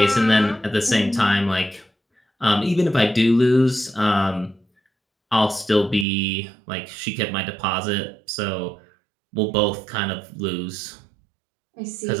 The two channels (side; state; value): left; drops out; at 6.1 s